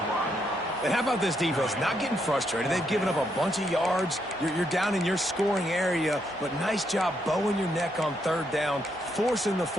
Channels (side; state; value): both; normal; correlation 0.77